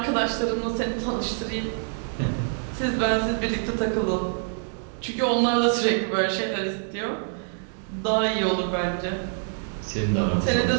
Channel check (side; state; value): left; silent; 61 dB below the other